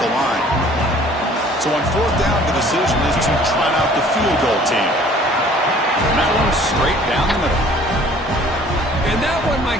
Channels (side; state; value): both; normal; correlation 0.53